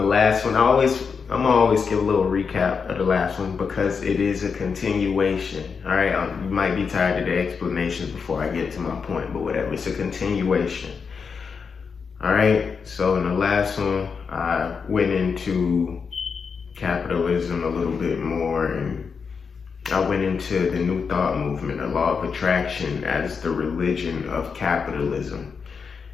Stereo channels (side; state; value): right; quieter; 5.7 dB